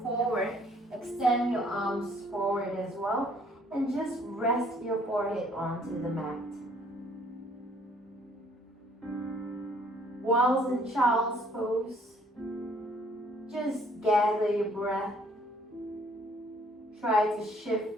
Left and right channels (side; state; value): both; normal; correlation 0.61